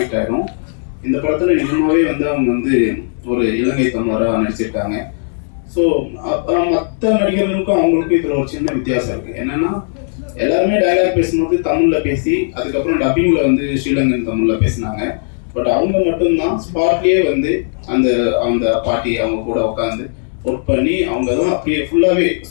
ஆகிடும். இந்த படத்தில் நிஜமாகவே வந்து அவங்க வந்து ஒரு இலங்கை தமிழராக நடிச்சிருக்காங்க. ஸோ மற்ற நடிகர்களுக்கும் அவங்களுக்கும் இதில் ஒரு சின்ன வித்தியாசம் இருக்குது. என்னென்னா எல்லாருமே டயலாக் பேசும்போது தமிழில் பேசி அதுக்கப்புறம் டப்பிங்கில் வந்து ஸ்ரீலங்கன் தமிழில் பேசினாங்க. பட் அவங்க மட்டும்தான் ஸ்பாட்லேயே வந்து அந்த பாட்டி அவங்க கூட உட்காந்து ஒர்க் பண்ணி அவங்க தான் அப்படியே ஃபுல்லாகவே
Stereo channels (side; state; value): right; silent; digital silence